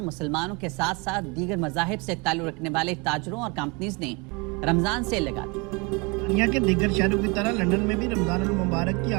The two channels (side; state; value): left; quieter; 29.0 dB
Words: के साथ साथ दीगर मज़ाहिब से ताल्लुक़ रखने वाले ताजरों और कंपनीज ने रमजान सेल लगा दी। दुनिया के दीगर शहरों की तरह लंदन में भी रमजान मुबारक की